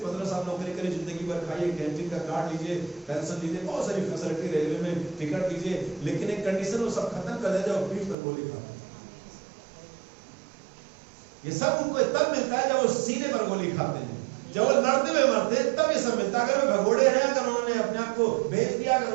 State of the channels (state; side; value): drops out; left; at 8.2 s